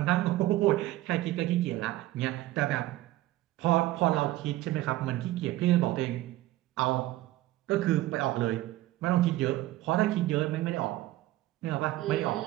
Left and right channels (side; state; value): left; quieter; 16.2 dB